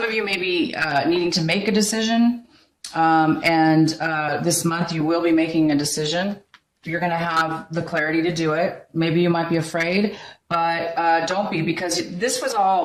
of you may be needing to make a decision, and this month you will be making a decision, you're going to have the clarity to do it. Maybe you might be afraid, but don't be, because this was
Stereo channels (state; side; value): identical; both; correlation 1.00